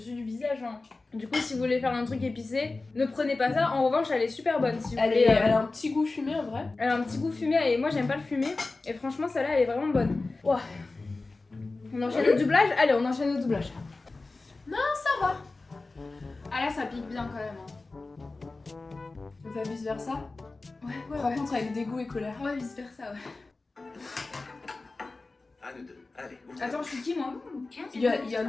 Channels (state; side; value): quieter; right; 3.5 dB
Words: du visage, hein. Du coup, si vous voulez faire un truc épicé, ne prenez pas ça. En revanche, elle est super bonne. Si vous Elle, voulez, elle a un petit goût fumé en vrai. elle a un petit goût fumé et moi, j'aime pas le fumé. Et franchement, celle-là, elle est vraiment bonne. Ouah. On enchaîne au doublage? Allez, on enchaîne au doublage. Ça va. Ah là, ça pique bien quand même. Hein. On fait vice versa. Ouais, Par contre, avec dégoût et colère. Ouais, vice versa, ouais. À nous deux. Allez, ouvre. Attends, je suis qui moi? Il y en